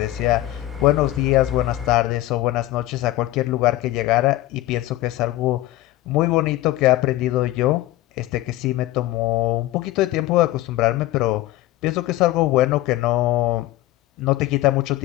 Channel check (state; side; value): quieter; right; 16.3 dB